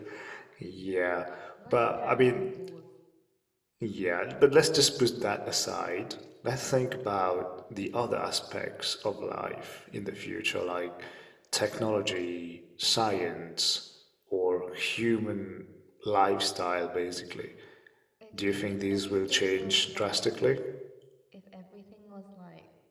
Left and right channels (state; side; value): identical; both; correlation 1.00